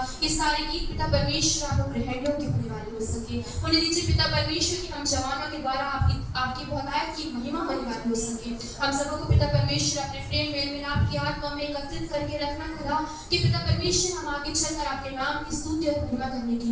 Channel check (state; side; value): identical; both; correlation 1.00